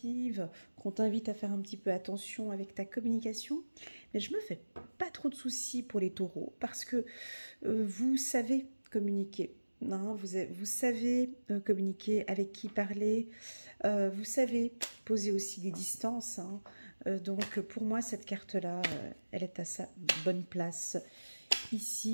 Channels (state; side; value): inverted; both; correlation -1.00